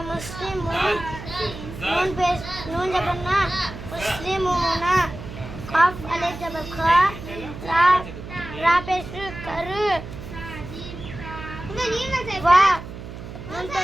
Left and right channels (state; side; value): noise; right; hum, 11 dB below the sound